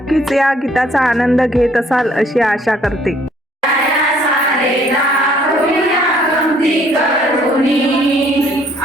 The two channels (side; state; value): both; normal; correlation 0.62